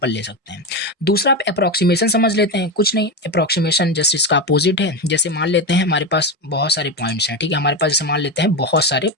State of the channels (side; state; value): both; normal; correlation 0.16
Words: ले सकते हैं। दूसरा आप अप्रोक्सीमेशन समझ लेते हैं, कुछ नहीं, अप्रोक्सीमेशन जस्ट इसका अपोजिट है। जैसे मान लेते हैं हमारे पास बहुत सारे पॉइंट्स हैं, ठीक है, हमारे पास जैसे मान लेते हैं बहुत सारे